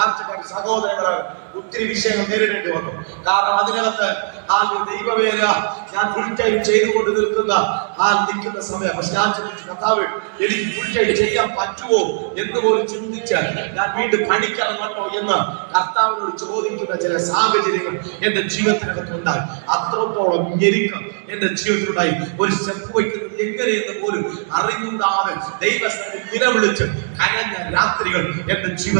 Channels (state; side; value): silent; left; digital silence